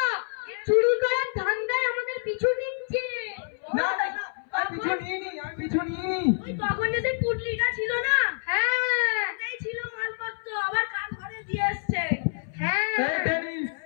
চুরি করার ধান্দায় আমাদের পিছু নিচ্ছে। না না না, আমি পিছু নিইনি, আমি পিছু নিইনি। ওই তখন যে সেই পুটলিটা ছিল না, হ্যাঁ এই ছিল মালপত্র, আবার কার ঘরে দিয়ে এসছে। হ্যাঁ এই টেনি,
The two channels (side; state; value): right; silent; 60 dB below the other